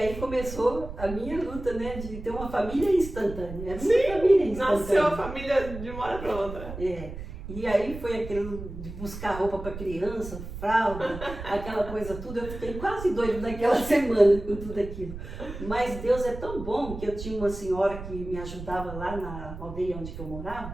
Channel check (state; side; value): noise; right; rumble, 10 dB below the sound